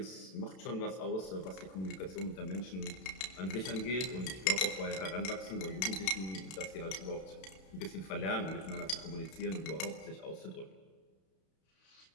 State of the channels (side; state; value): right; late; 32 ms